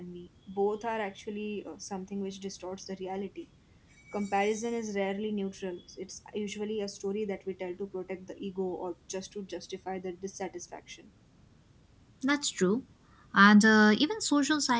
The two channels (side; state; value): both; identical; correlation 1.00